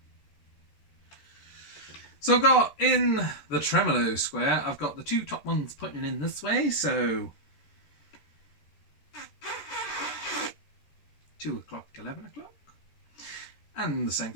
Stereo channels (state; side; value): late; right; 14 ms